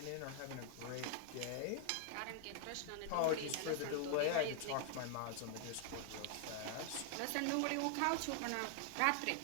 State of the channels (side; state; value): both; different; correlation 0.00